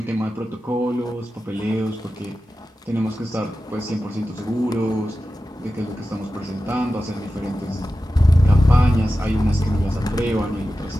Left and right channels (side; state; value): both; normal; correlation 0.93